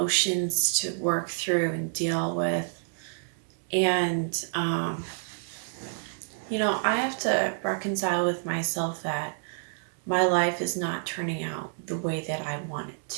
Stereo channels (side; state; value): left; silent; 59 dB below the other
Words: to work through and deal with, and I have to reconcile with myself that my life is not turning out the way that I want it